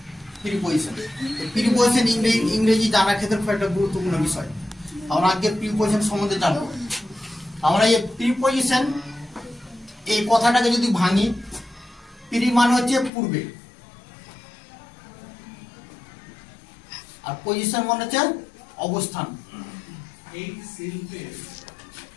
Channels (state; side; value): drops out; right; at 13.1 s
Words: প্রিপজিশন। প্রিপজিশন ইংরেজি জানার ক্ষেত্রে খুব একটা গুরুত্বপূর্ণ বিষয়। আমরা আজকে প্রিপজিশন সম্বন্ধে জানবো। আমরা এই প্রিপজিশন এই কথাটাকে যদি ভাঙি, প্রি মানে হচ্ছে পূর্বে, আর পজিশন মানে হচ্ছে অবস্থান।